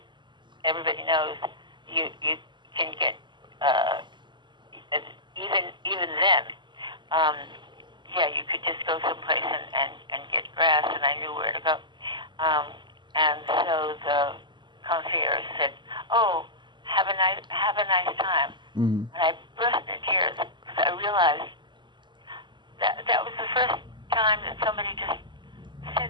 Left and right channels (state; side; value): late; left; 0.22 ms